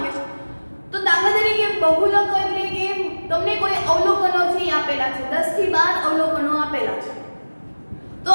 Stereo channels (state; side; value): inverted; both; correlation -1.00